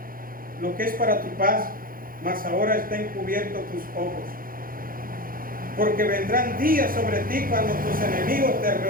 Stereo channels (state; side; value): late; left; 0.41 ms